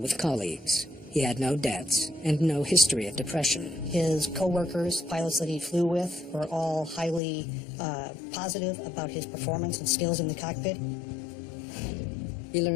colleagues. He had no debts and no history of depression. His co-workers, pilots that he flew with, were all highly positive about his performance and skills in the cockpit. He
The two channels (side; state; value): right; drops out; at 7.2 s